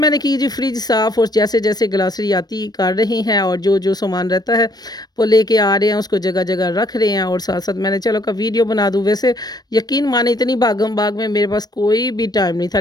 की जी फ्रिज साफ़, और जैसे-जैसे ग्रॉसरी आती कर रही हैं, और जो सामान रहता है वो लेके आ रहे हैं, उसको जगह-जगह रख रहे हैं, और साथ-साथ मैंने चलो का वीडियो बना दूँ। वैसे यकीन माने इतनी भागम-भाग में मेरे पास कोई भी टाइम नहीं था,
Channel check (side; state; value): right; late; 0.19 ms